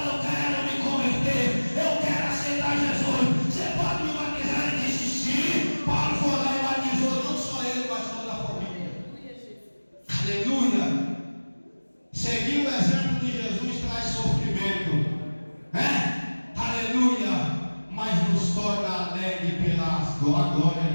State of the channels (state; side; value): inverted; both; correlation -1.00